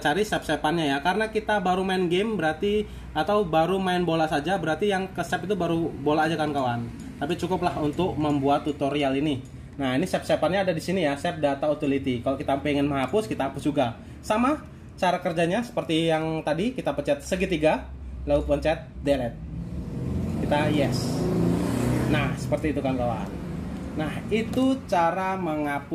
save-save-annya ya. Karena kita baru main game berarti, atau baru main bola saja, berarti yang ke save itu baru bola aja kan kawan. Tapi cukuplah untuk membuat tutorial ini. Nah, ini save-save-annya ada di sini ya, save data utility. Kalau kita pengen menghapus, kita hapus juga. Sama cara kerjanya seperti yang tadi, kita pencet segitiga, lalu pencet delete. Kita yes. Nah, seperti itu kan kawan. Nah, itu cara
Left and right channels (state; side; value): identical; both; correlation 1.00